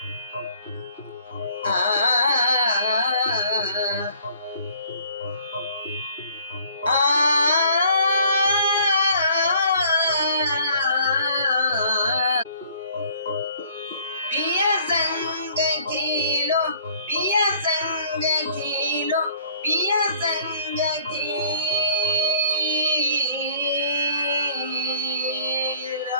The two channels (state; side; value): inverted; both; correlation -0.56